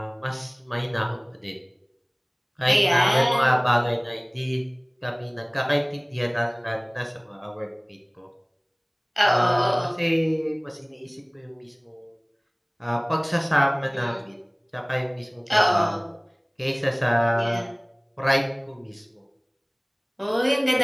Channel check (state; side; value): identical; both; correlation 1.00